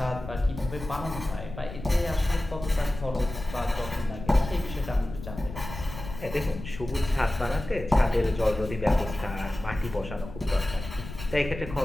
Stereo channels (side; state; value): left; noise; rumble, 11 dB below the sound